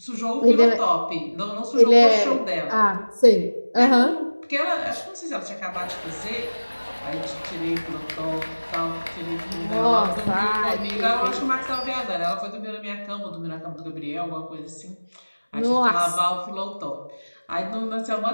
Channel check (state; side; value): inverted; both; correlation -1.00